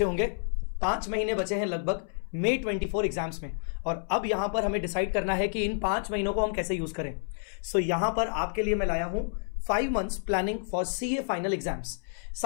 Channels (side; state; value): right; silent; 58 dB below the other